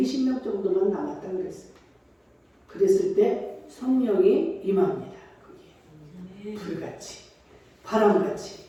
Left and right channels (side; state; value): both; identical; correlation 1.00